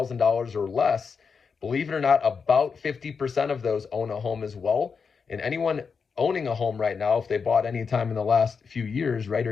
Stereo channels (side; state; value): right; quieter; 5.6 dB